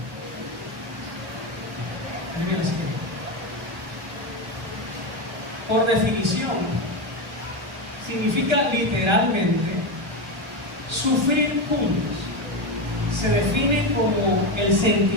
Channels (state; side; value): late; left; 1.1 ms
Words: Por definición, significa literalmente sufrir juntos. Se define como el